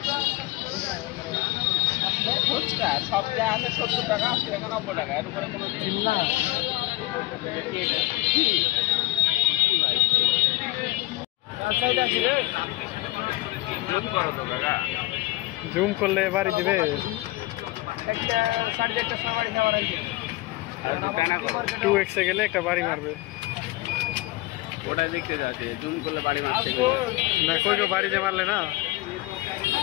ফুচকা সব যা আছে 70 টাকা 80 টাকা 90 টাকা এর উপরে কোনো জিনিস না কি সাইড আছে রে জুম করো তো কাকা। জুম করলে বাড়ি দিবে। একটা 4.5টা সময় নেওয়ার আগে টু এক্সে গেলে একটা বাড়ি মারবে। ওটা দেখতে যাচ্ছে জুম করলে বাড়ি মারছে না কই বাড়ি যে মারলে না।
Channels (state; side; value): quieter; right; 19.0 dB